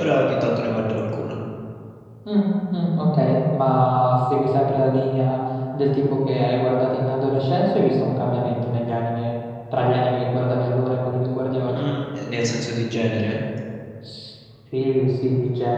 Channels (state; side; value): identical; both; correlation 1.00